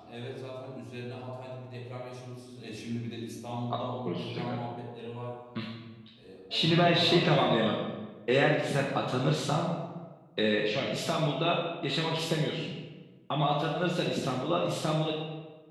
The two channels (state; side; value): identical; both; correlation 1.00